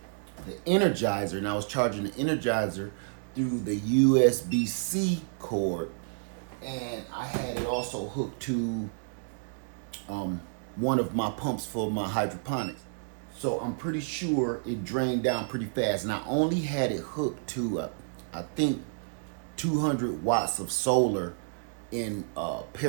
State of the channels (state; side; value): silent; left; digital silence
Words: the Energizer, and I was charging the Energizer through the USB-C cord, and I had it also hooked to one of my pumps for my hydroponics. So I'm pretty sure it drained down pretty fast, and I only had it hooked to I think 200 watts of solar in